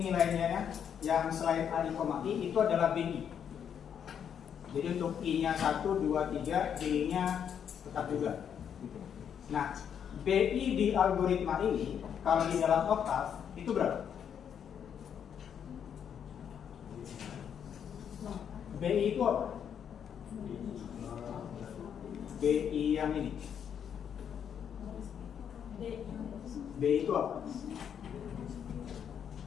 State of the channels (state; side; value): quieter; right; 8.3 dB